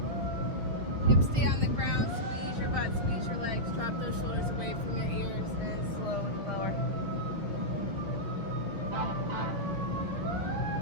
Hips stay on the ground. Squeeze your butt, squeeze your legs. Drop those shoulders away from your ears and slowly lower.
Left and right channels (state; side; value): late; left; 6.7 ms